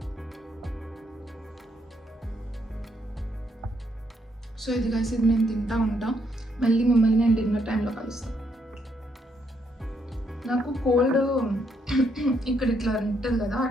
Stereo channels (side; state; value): both; normal; correlation 0.74